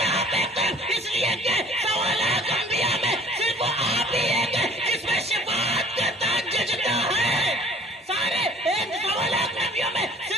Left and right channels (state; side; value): normal; both; correlation 0.50